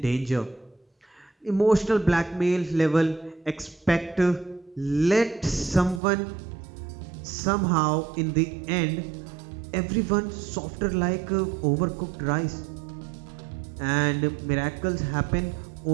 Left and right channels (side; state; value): left; drops out; at 6.0 s